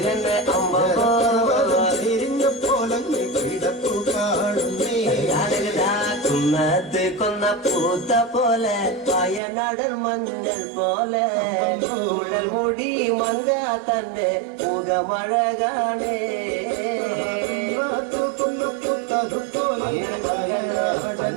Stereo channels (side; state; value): left; drops out; at 9.4 s